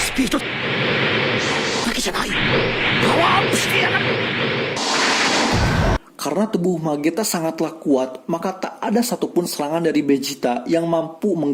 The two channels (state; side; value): identical; both; correlation 1.00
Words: Karena tubuh Mageta sangatlah kuat, maka tak ada satupun serangan dari Vegeta yang mampu